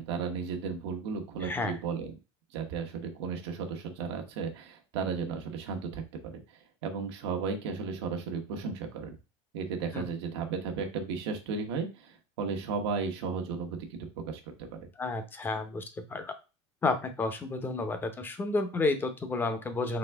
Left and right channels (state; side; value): normal; both; correlation 0.35